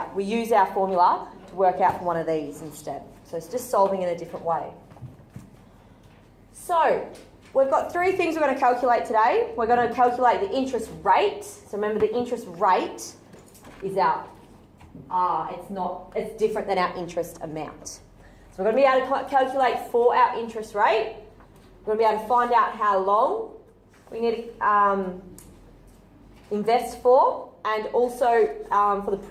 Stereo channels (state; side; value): identical; both; correlation 1.00